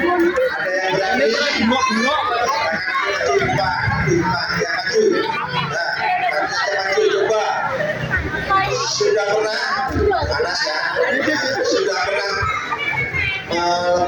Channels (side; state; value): both; identical; correlation 1.00